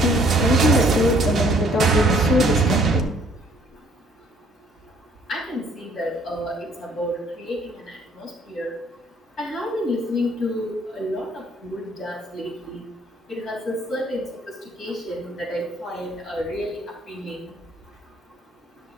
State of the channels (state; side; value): normal; both; correlation 0.62